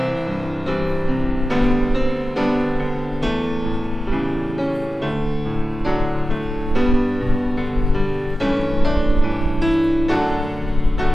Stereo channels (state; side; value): normal; both; correlation 0.94